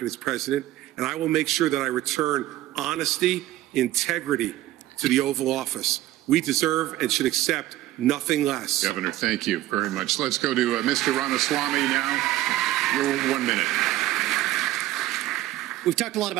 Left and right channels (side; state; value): left; quieter; 15.4 dB